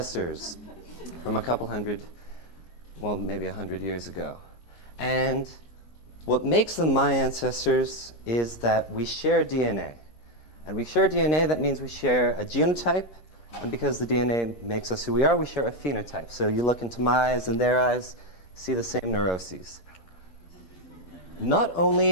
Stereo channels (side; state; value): right; late; 5.9 ms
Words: from a couple hundred, well, maybe 100 years ago. And what makes them my ancestors is that we share DNA. And we share DNA, that means we share a genotype. And because the DNA makes us who we are, we share a phenotype. So you look into my eyes and their eyes, see the same neuroses. Not